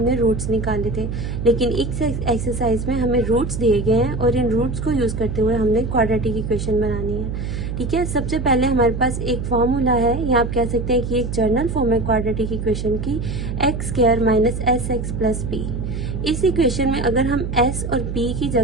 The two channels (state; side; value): noise; right; hum, 4 dB below the sound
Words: रूट्स निकाले थे. लेकिन इस एक्सरसाइज में हमें रूट्स दिए गए हैं और इन रूट्स को यूज़ करते हुए हमने क्वाड्रेटिक इक्वेशन बनानी है. ठीक है, सबसे पहले हमारे पास एक फॉर्मूला है, या आप कह सकते हैं कि एक जर्नल फॉर्म है क्वाड्रेटिक इक्वेशन की, x² - sx + p. इस इक्वेशन में अगर हम s और p की